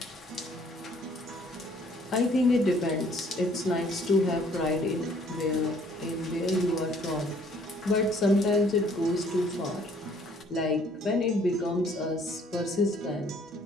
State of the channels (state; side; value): normal; both; correlation 0.60